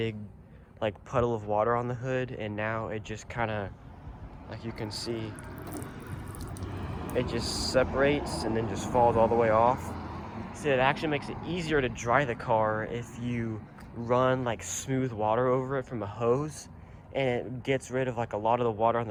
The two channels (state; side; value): identical; both; correlation 1.00